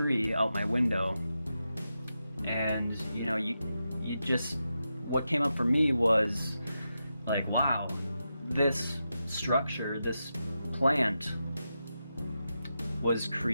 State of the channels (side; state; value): both; inverted; correlation -0.88